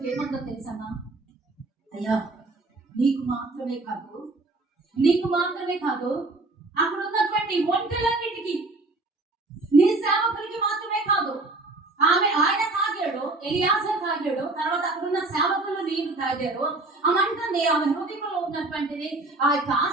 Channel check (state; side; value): quieter; left; 3.1 dB